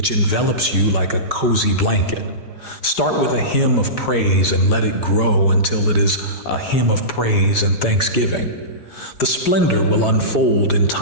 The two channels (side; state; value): right; late; 4.9 ms